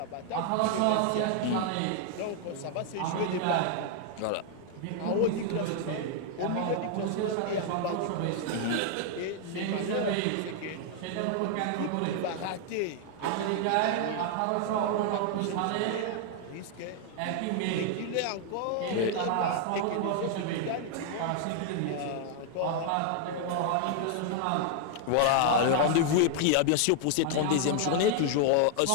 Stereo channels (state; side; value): different; both; correlation 0.00